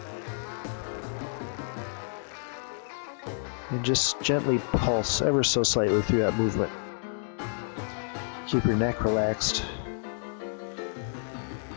And just gently pulse ever so slightly through that movement. Keep your neck relaxed.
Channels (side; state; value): right; silent; digital silence